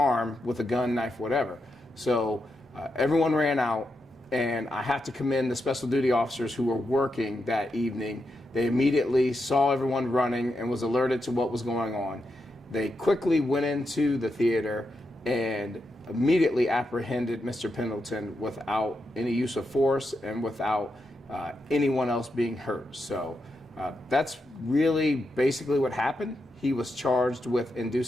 with a gun, knife, whatever. So everyone ran out, and I have to commend the special duty officers who were working that evening. They immediately saw everyone running and was alerted to what was going on. They quickly went into the theater and immediately apprehended Mr. Pendleton without any use of force and without anyone else being hurt. So that's really basically what happened. He was charged with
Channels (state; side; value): normal; both; correlation 0.85